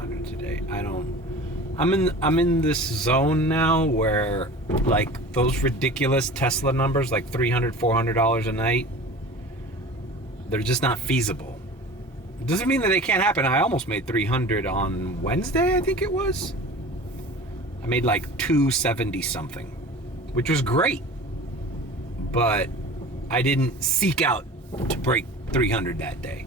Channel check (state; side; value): normal; both; correlation 0.38